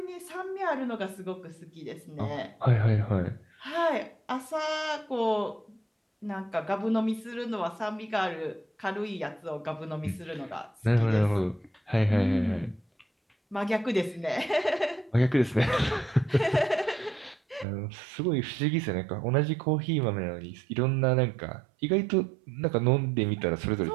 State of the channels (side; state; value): left; drops out; at 17.7 s